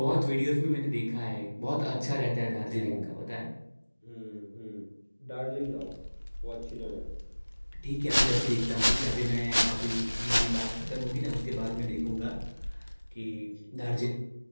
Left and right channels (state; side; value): inverted; both; correlation -1.00